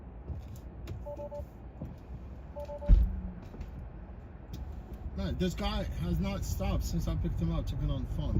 Man, this guy has not stopped since I picked him up, took it on the phone.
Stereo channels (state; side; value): identical; both; correlation 1.00